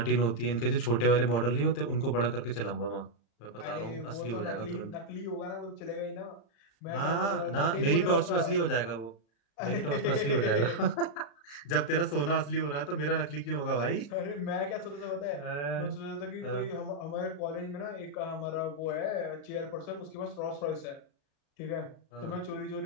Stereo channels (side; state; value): right; late; 35 ms